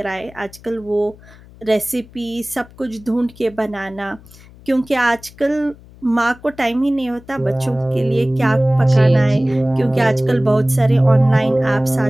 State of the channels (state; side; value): noise; left; hum, 23 dB below the sound